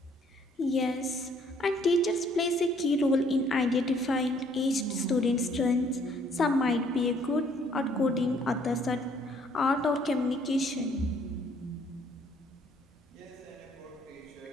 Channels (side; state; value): both; normal; correlation 0.63